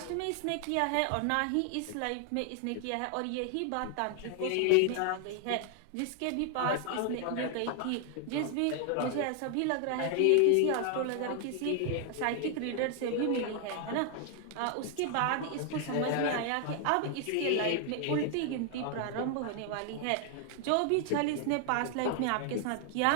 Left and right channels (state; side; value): different; both; correlation 0.00